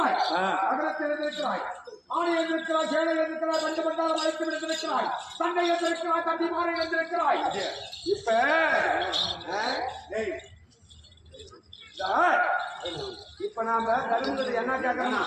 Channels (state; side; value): identical; both; correlation 1.00